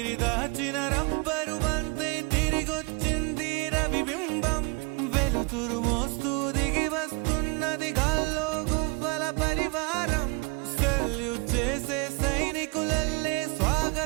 దాచిన రబ్బరు బంతే తిరిగొచ్చింది రవిబింబం వెలుతురు మోస్తూ దిగి వస్తున్నది గాల్లో గువ్వల పరివారం సెల్యూట్ చేసే సైనికులల్లే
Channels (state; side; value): quieter; left; 30.4 dB